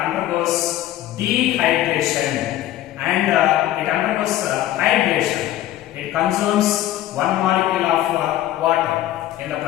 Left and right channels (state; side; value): quieter; right; 13.8 dB